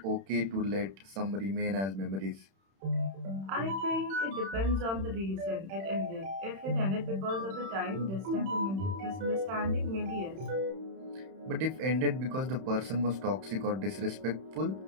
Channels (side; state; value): left; late; 31 ms